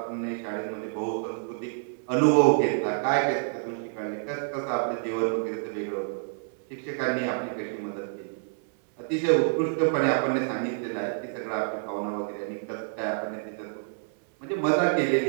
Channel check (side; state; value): left; silent; 59 dB below the other